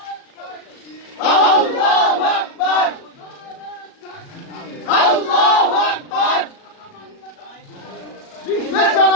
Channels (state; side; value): late; right; 37 ms